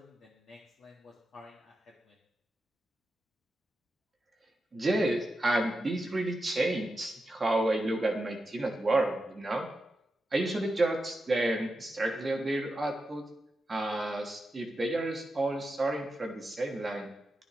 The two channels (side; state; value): both; normal; correlation 0.89